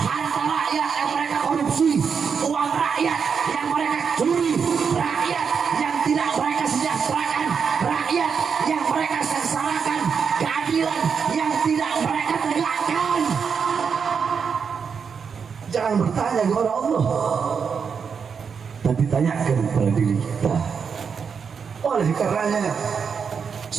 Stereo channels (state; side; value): quieter; left; 6.3 dB